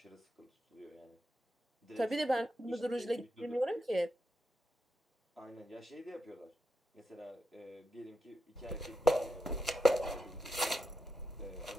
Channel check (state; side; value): normal; both; correlation 0.88